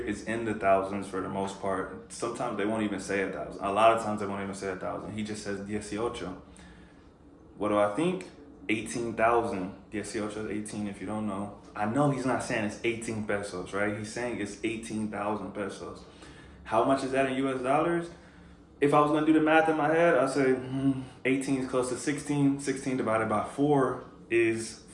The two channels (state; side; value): identical; both; correlation 1.00